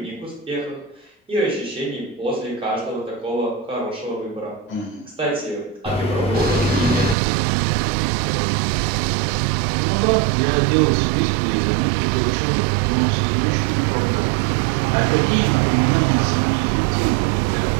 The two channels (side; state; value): left; drops out; at 7.2 s